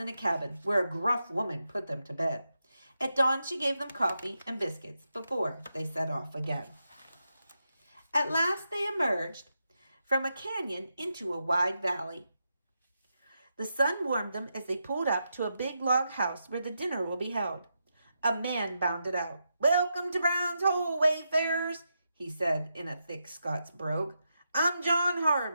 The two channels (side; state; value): both; inverted; correlation -0.85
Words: in a cabin where a gruff woman put them to bed. At dawn, she gave them coffee and biscuits before they set off again. At last, they emerged from a canyon into a wide valley. The sun warmed them as they pulled up to a big log house where the dinner will be held. A man bounded out. "Welcome to Brown's Hole, wayfarers," he said in a thick Scots brogue. "I'm John